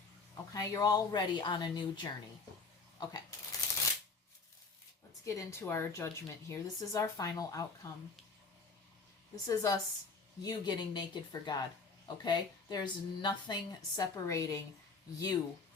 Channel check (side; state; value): right; quieter; 4.4 dB